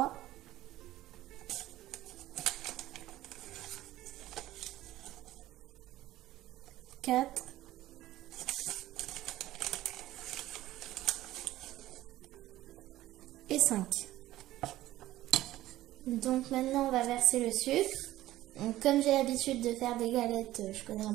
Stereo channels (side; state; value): left; quieter; 15.2 dB